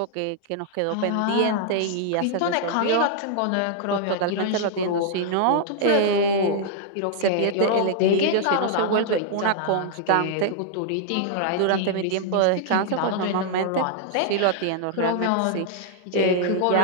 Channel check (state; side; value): different; both; correlation -0.01